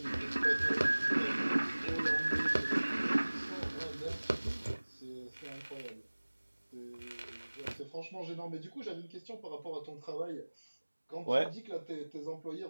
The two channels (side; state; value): both; inverted; correlation -1.00